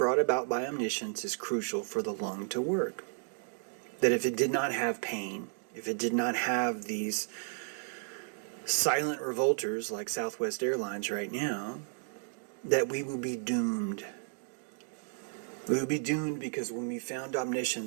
about by omniscience is crucial for the lung to work. That if it did not have pain, if it did not have these silent revolters like Southwest Airlines right now, that we will be doomed. We would be doomed because when we found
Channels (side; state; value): left; silent; digital silence